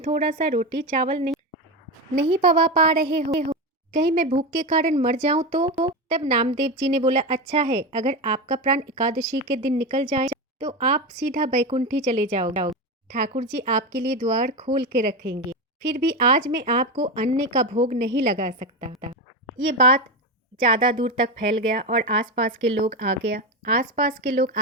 सा रोटी चावल नहीं पवा पा रहे हो, कहीं मैं भूख के कारण मर जाऊं तो? तब नामदेव जी ने बोला, अच्छा है, अगर आपका प्राण एकादशी के दिन निकल जाए तो आप सीधा बैकुंठी चले जाओगे, ठाकुर जी आपके लिए द्वार खोल के रखेंगे, फिर भी आज मैं आपको अन्न का भोग नहीं लगा सकता। ये बात ज़्यादा दूर तक फैल गया और आसपास के लोग आ गया। आसपास के लोग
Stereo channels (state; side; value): normal; both; correlation 0.16